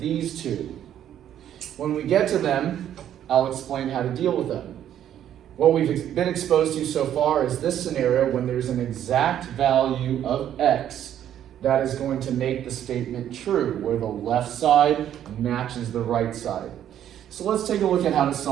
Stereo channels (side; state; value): left; quieter; 10.6 dB